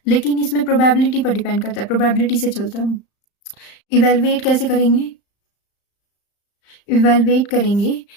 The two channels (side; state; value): right; late; 35 ms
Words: लेकिन इसमें प्रोबेबिलिटी पर डिपेंड करता है, प्रोबेबिलिटी से चलता है। इवेलुएट कैसे करेंगे? इवेलुएट करेंगे